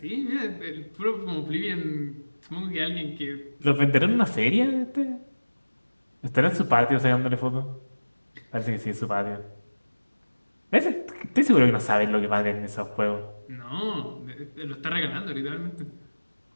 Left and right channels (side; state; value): both; inverted; correlation -1.00